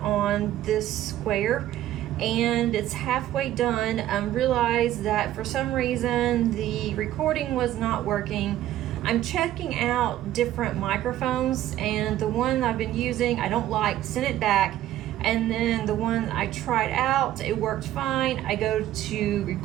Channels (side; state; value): left; quieter; 13.3 dB